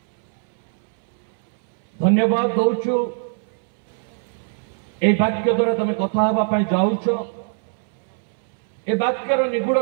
धन्यवाद दौचु ए वाक्य द्वारा तुम कथा हवा पाई जाउछ ए वाक्यर निगूढ़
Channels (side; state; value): left; silent; 63 dB below the other